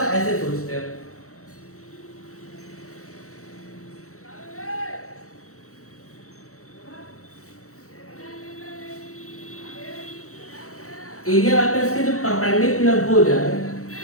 ऐसे सोचते हैं। एरिया वेक्टर्स के जो परपेंडिकुलर हो जाए,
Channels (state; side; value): late; right; 0.64 ms